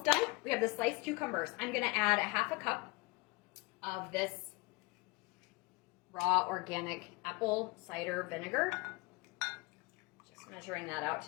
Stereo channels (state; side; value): quieter; right; 25.6 dB